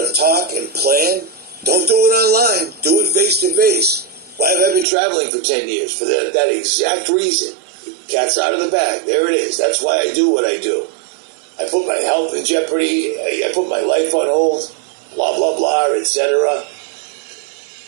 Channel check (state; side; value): drops out; left; at 4.9 s